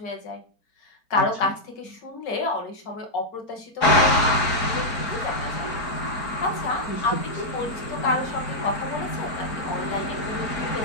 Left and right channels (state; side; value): late; right; 4.4 ms